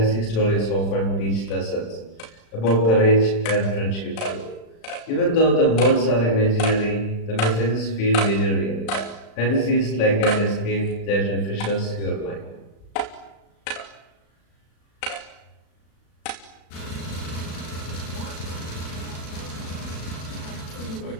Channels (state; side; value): late; right; 36 ms